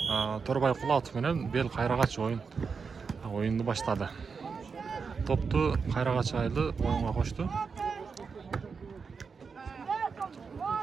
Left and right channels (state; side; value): quieter; left; 5.4 dB